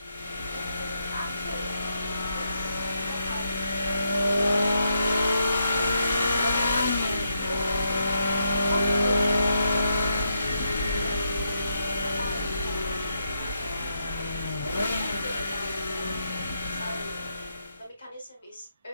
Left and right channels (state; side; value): inverted; both; correlation -0.80